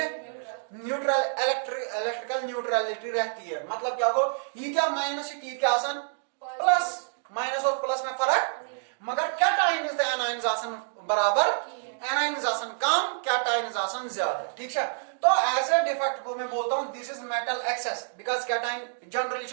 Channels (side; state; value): left; silent; digital silence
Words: न्यूट्रल इलेक्ट्रिकल न्यूट्रलिटी रहती है। मतलब क्या हो ये क्या माइनस क्या आसान प्लस, माइनस और प्लस में फर्क, मगर कैटाइन एनाइन आसान बराबर एनाइन आसान कम कैटाइन आसान ज्यादा। ठीक है तो ऐसे डिफेक्ट को मैं बोलता हूं this is metal excess, because cation generally